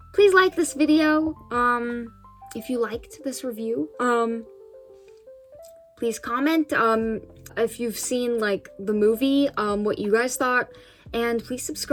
please like this video if you liked this review. Please comment if you've seen like the movie, what you guys thought, and please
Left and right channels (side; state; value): both; identical; correlation 1.00